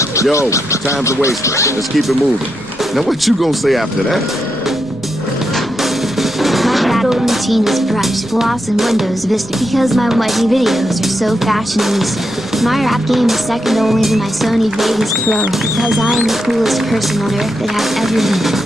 Yo, time's a waste. Let's keep it moving. Now what you gonna say after that? My battle routine is brush, gloss, and Windows Vista because my YG videos are so fashionista. My rap game is second only to my Sony Vegas Pro because I am the coolest person on earth that has ever been.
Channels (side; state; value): left; noise; rumble, 23 dB below the sound